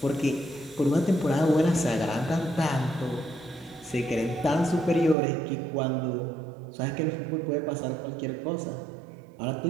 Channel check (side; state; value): left; drops out; at 5.2 s